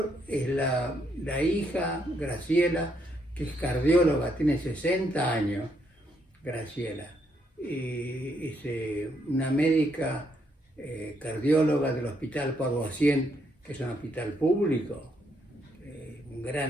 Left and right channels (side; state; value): both; normal; correlation 0.75